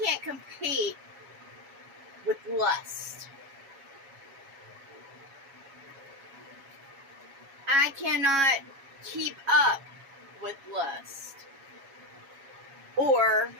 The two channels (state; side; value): late; left; 7.3 ms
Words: compete with lust. I cannot keep up with lust. Or